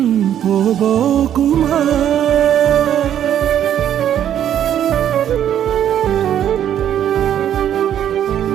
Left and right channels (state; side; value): quieter; left; 10.3 dB